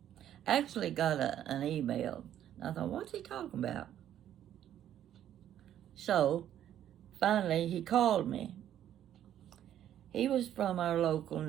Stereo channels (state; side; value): quieter; left; 11.0 dB